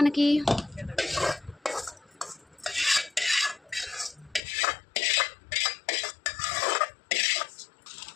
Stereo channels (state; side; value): drops out; right; at 4.4 s